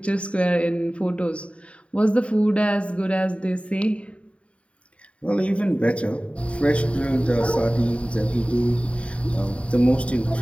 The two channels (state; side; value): late; right; 0.062 ms